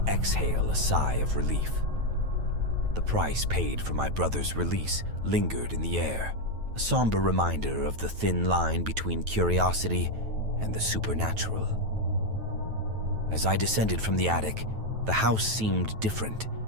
exhale a sigh of relief. The price paid for my brother's release lingered in the air, a somber reminder of the thin line between curiosity and the supernatural. As I descended from the attic, the house seemed different,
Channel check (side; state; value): left; late; 9.2 ms